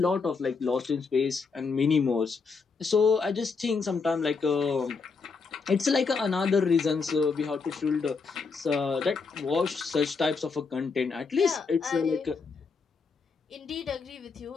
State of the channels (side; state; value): right; quieter; 4.8 dB